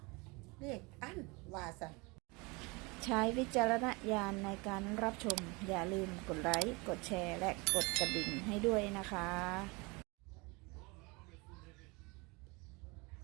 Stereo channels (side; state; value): left; quieter; 27.1 dB